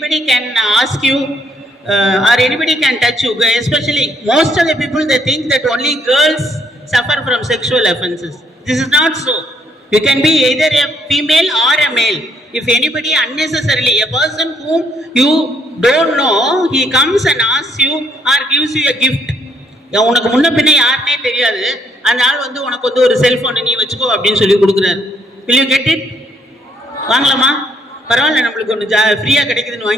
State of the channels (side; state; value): both; normal; correlation 0.69